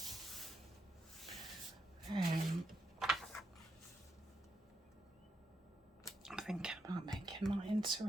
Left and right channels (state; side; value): normal; both; correlation 0.82